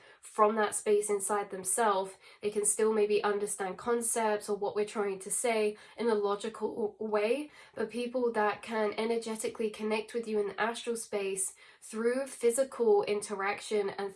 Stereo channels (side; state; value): both; identical; correlation 1.00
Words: from that space inside themselves. They can still maybe understand concepts or what we're trying to say in a logical way. But people that can energetically connect with you in the astral space through physical interaction and